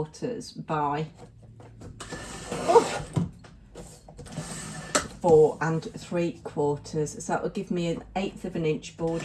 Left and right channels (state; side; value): identical; both; correlation 1.00